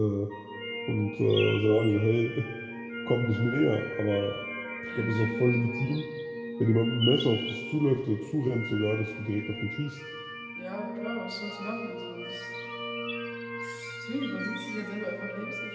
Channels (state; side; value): identical; both; correlation 1.00